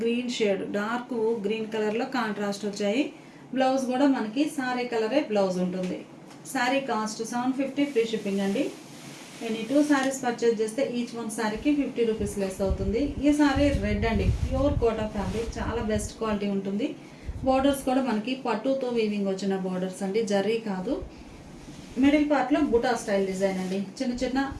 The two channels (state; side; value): identical; both; correlation 1.00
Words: గ్రీన్ షేడ్, డార్క్ గ్రీన్ కలర్లో కాంట్రాస్ట్ వచ్చాయి. బ్లౌజ్ కూడా మనకి సారీ కలరే బ్లౌజ్ ఉంటుంది. శారీ కాస్ట్ 750 ఫ్రీ షిప్పింగ్ అండి. ఎనీ 2 సారీస్ పర్చేజ్ చేస్తే ఈచ్ వన్ సారీకి 50 రూపీస్ లెస్ అవుతుంది. ఈ సారీ రెడ్ అండి. ప్యూర్ కోటా ఫ్యాబ్రిక్, చాలా బెస్ట్ క్వాలిటీ ఉంటుంది. బోర్డర్స్ కూడా మనకి పట్టుతో వీవింగ్ వచ్చిన బోర్డర్స్ అండి, జరీ కాదు. మిడిల్ పార్ట్లో బుటా స్టైల్ డిజైన్ అండి. చిన్న చిన్న